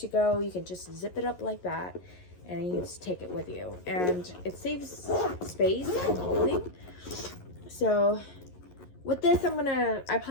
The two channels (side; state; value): right; late; 11 ms